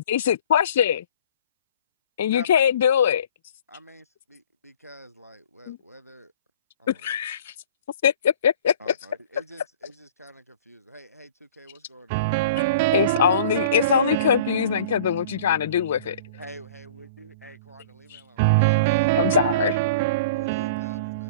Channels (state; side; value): inverted; both; correlation -0.42